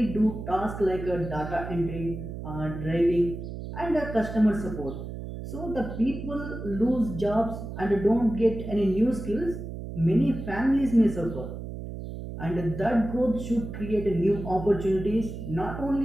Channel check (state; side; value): noise; right; hum, 8 dB below the sound